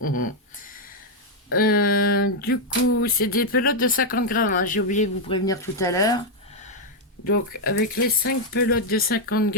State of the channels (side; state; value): both; normal; correlation 0.00